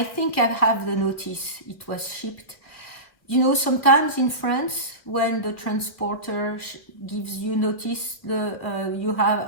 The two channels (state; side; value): late; right; 2.2 ms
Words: think I have the notice. It was shipped. You know, sometimes in France, when the transporter gives you notice you